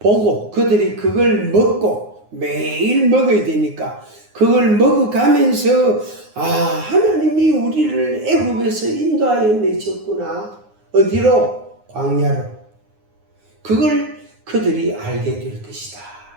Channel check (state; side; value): late; left; 9.6 ms